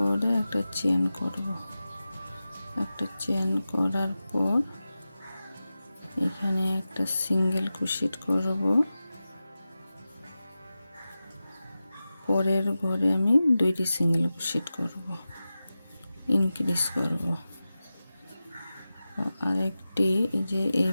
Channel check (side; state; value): both; inverted; correlation -0.94